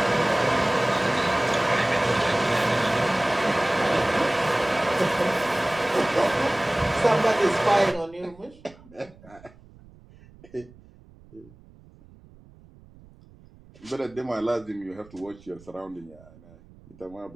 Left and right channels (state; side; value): noise; right; rumble, 24 dB below the sound